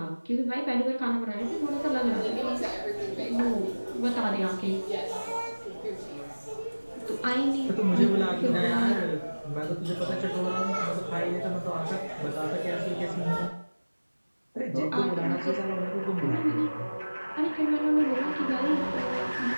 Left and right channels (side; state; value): both; inverted; correlation -1.00